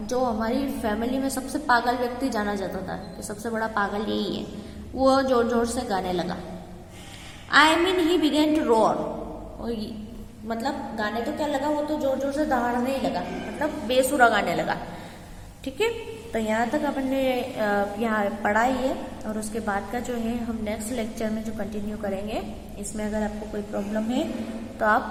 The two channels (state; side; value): identical; both; correlation 1.00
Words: जो हमारी फैमिली में सबसे पागल व्यक्ति जाना जाता था कि सबसे बड़ा पागल यही है, वो जोर जोर से गाने लगा। I mean he began to roar. मतलब गाने तो क्या लगा, वो तो जोर जोर से दहाड़ने ही लगा, मतलब बेसुरा गाने लगा। ठीक है, तो यहाँ तक अपन ने यहाँ पढ़ा ही है और उसके बाद का जो है हम नेक्स्ट लेक्चर में जो कंटिन्यू करेंगे। इसमें अगर आपको कोई प्रॉब्लम है तो आप